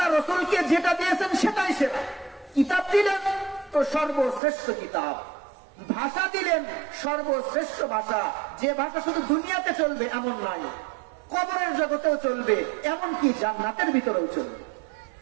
রাসূলকে যেটা দিয়েছেন সেটাই সেরা। কিতাব দিলেন তো সর্বশ্রেষ্ঠ কিতাব, ভাষা দিলেন সর্বশ্রেষ্ঠ ভাষা। যে ভাষা শুধু দুনিয়াতে চলবে এমন নয়, কবরের জগতেও চলবে, এমনকি জান্নাতের ভিতরেও চলবে।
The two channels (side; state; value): left; drops out; at 4.4 s